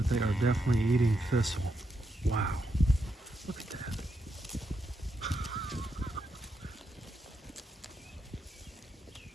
they are definitely eating thistle. Wow. Look at that.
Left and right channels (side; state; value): both; normal; correlation 0.82